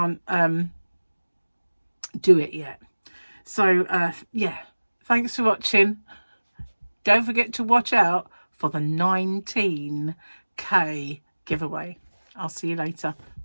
do it yet. So yeah, thanks for watching. Don't forget to watch out for the 19K giveaway. I'll see you later.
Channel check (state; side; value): inverted; both; correlation -1.00